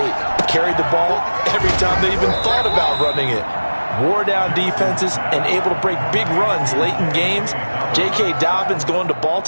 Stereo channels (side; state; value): both; inverted; correlation -1.00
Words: Carried the ball every time they even thought about running it. Wore down defenses and able to break big runs late in games. J.K. Dobbins going to